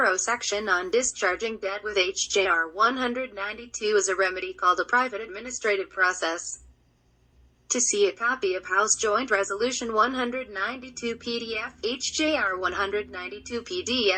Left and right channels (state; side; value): identical; both; correlation 1.00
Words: section on discharging debt with HJR 192 as a remedy called a private administrative process. To see a copy of House Joint Resolution 192 PDF, HJR 192